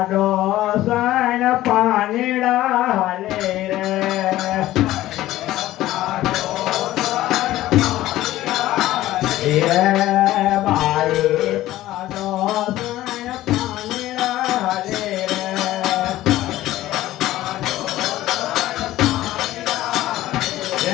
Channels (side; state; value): right; quieter; 15.2 dB